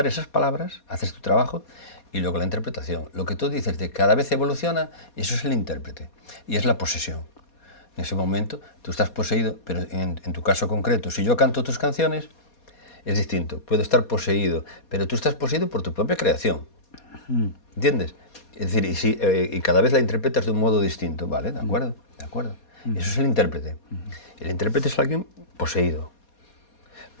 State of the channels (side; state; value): right; late; 4.2 ms